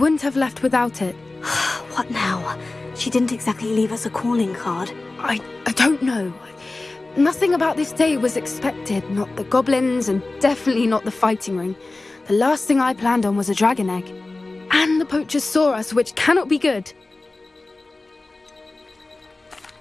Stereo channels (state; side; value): quieter; right; 3.2 dB